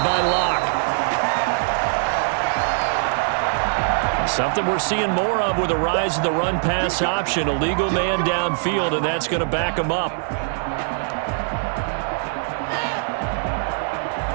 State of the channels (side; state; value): left; silent; 55 dB below the other